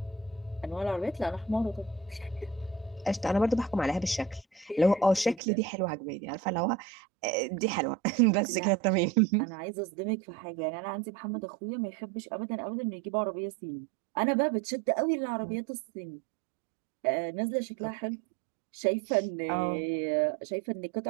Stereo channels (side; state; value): left; drops out; at 5.4 s